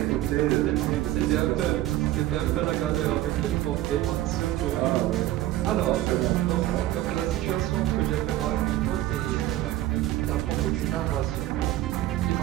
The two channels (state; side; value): quieter; left; 14.7 dB